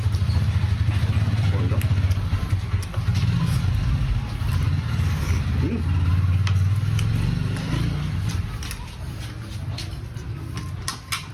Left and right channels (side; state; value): both; identical; correlation 1.00